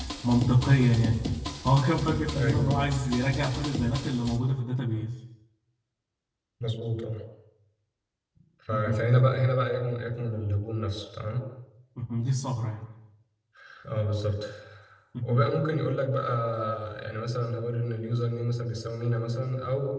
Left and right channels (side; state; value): both; identical; correlation 1.00